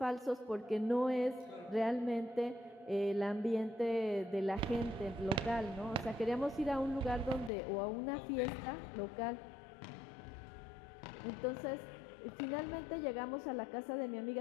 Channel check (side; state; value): right; drops out; at 7.5 s